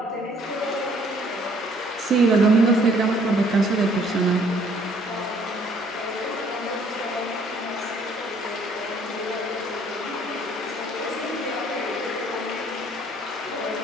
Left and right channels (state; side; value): normal; both; correlation 0.61